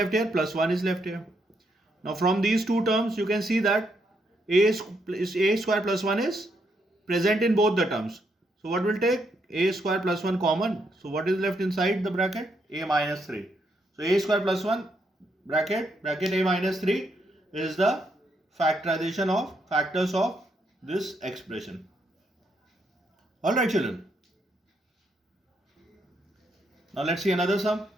here? Plus 1 is left here. Now from these two terms you can see that a square plus 1 is present in both the terms. So what will take? A square plus 1 common. So what is left inside the bracket? A minus 3. So a square plus 1 bracket a minus 3 is the factorization of factors of this expression. Alright children. Now let's see another sum.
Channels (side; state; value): both; normal; correlation 0.77